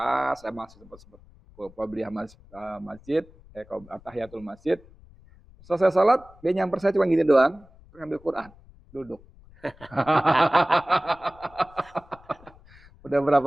saya masih sempat qobliyah masjid, tahiyatul masjid. Selesai salat, dia nyamper saya cuma gini doang, ngambil Quran, duduk. Udah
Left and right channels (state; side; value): noise; left; rumble, 25 dB below the sound